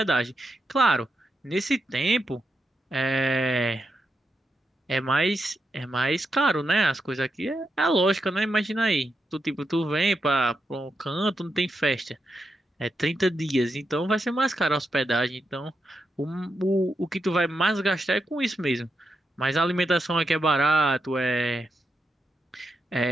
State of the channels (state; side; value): normal; both; correlation 0.85